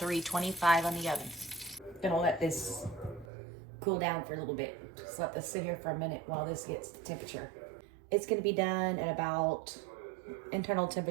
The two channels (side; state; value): left; drops out; at 3.2 s